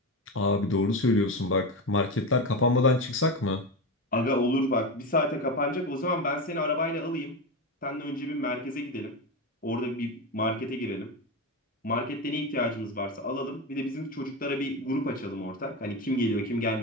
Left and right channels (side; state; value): both; normal; correlation 0.18